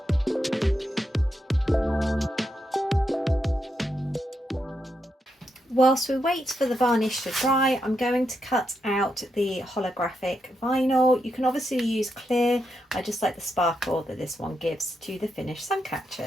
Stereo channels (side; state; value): both; normal; correlation 0.83